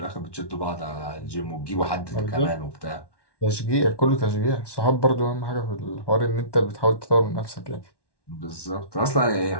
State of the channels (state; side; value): late; right; 1.1 ms